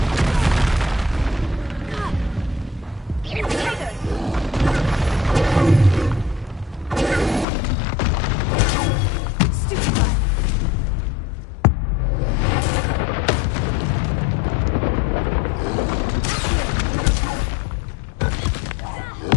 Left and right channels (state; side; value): drops out; right; at 7.5 s